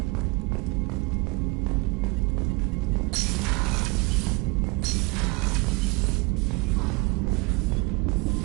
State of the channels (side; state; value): left; quieter; 26.5 dB